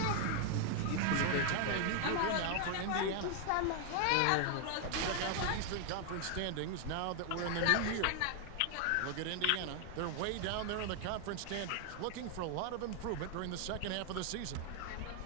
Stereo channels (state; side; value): different; both; correlation 0.00